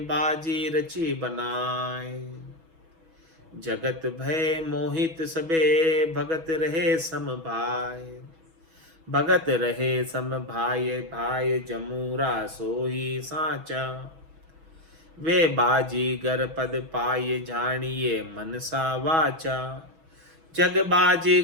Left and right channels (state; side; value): late; left; 6.1 ms